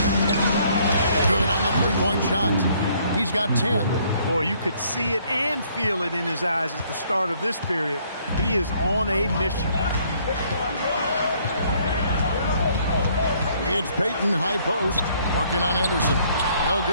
Good on the three-point shot. He's got 10. Boy, you could see it and feel it in his eyes at the start of this period. He is on a mission. It's Payton, high post, working on Anderson. No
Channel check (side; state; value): both; inverted; correlation -0.64